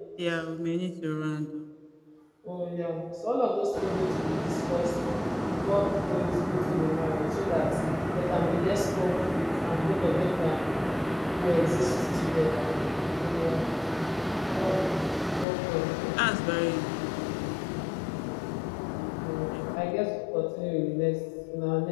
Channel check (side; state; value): right; drops out; at 15.5 s